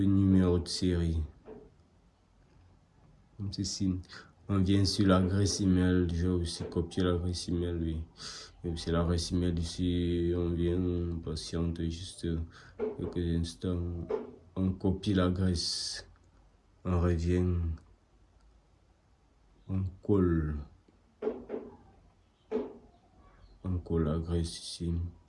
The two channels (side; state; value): both; identical; correlation 1.00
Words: numéro de série. Comme ceci. On vient sur l'adresse email. Je vais aussi copier l'adresse email. Oui. C'est l'adresse email ici. On vient, on patiente juste quelques instants. On copie l'adresse. On revient. On colle. On colle l'adresse ici.